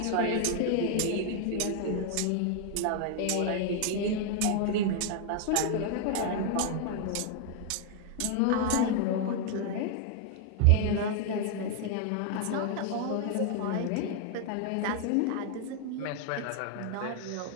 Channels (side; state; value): both; different; correlation 0.00